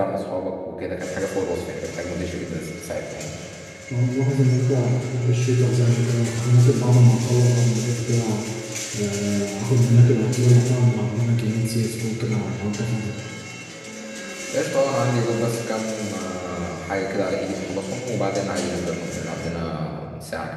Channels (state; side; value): identical; both; correlation 1.00